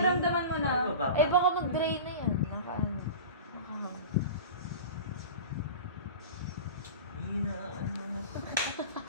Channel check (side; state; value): both; inverted; correlation -0.33